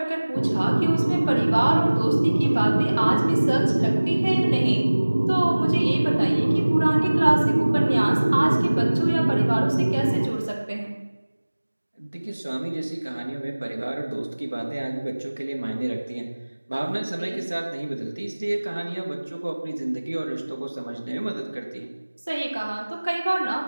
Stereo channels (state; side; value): inverted; both; correlation -1.00